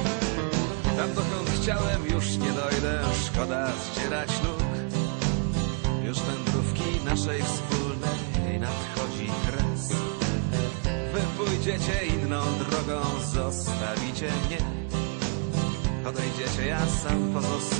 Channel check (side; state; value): left; quieter; 34.9 dB